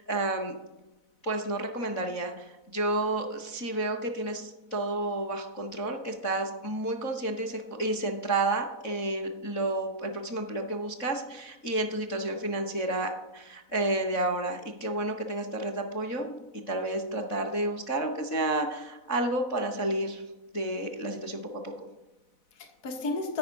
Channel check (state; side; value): late; right; 4.0 ms